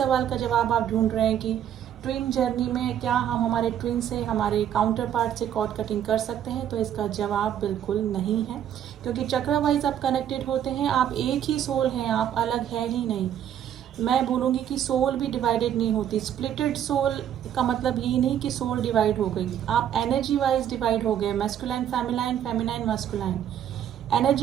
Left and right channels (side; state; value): left; quieter; 10.0 dB